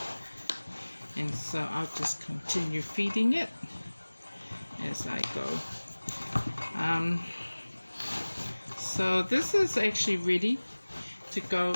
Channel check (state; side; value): inverted; both; correlation -1.00